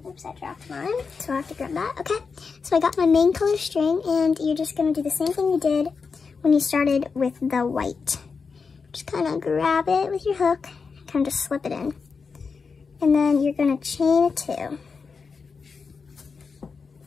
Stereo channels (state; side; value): quieter; right; 5.1 dB